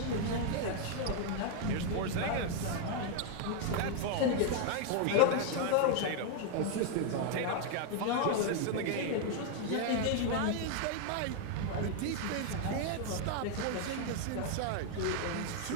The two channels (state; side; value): different; both; correlation 0.00